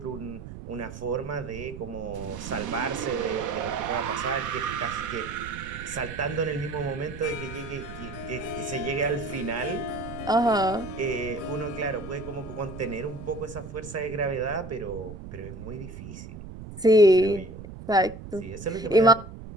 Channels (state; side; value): noise; right; rumble, 12 dB below the sound